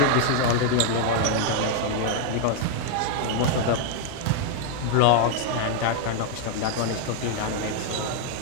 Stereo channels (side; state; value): both; different; correlation 0.00